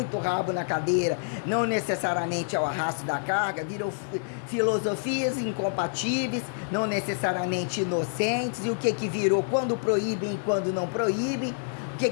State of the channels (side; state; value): right; silent; digital silence